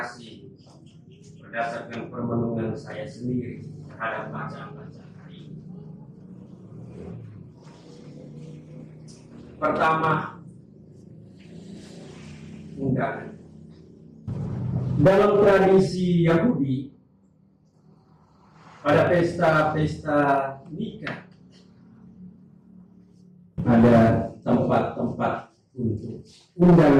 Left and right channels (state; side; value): identical; both; correlation 1.00